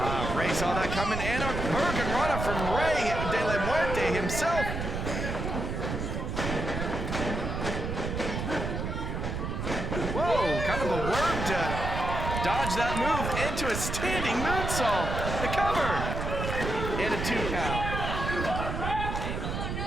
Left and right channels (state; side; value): noise; right; rumble, 3 dB below the sound